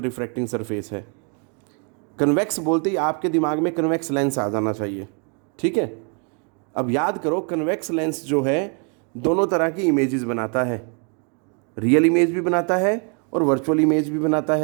रिफ्रैक्टिंग सरफेस है। कन्वेक्स बोलते ही आपके दिमाग में कन्वेक्स लेंस आ जाना चाहिए, ठीक है। अब याद करो, कन्वेक्स लेंस जो है दोनों तरह की इमेजेस बनाता है, रियल इमेज भी बनाता है और वर्चुअल इमेज भी बनाता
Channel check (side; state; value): left; quieter; 38.0 dB